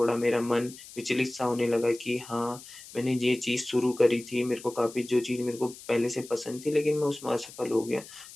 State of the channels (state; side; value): noise; left; hiss, 17 dB below the sound